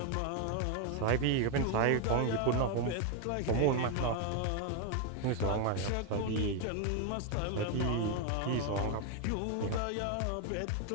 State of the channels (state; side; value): different; both; correlation 0.01